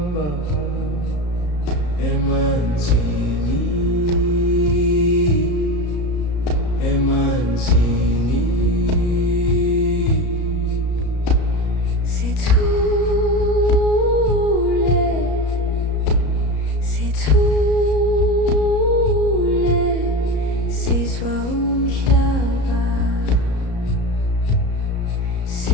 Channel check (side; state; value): right; late; 34 ms